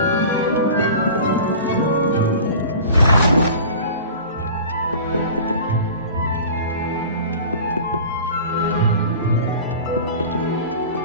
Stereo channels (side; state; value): both; inverted; correlation -0.39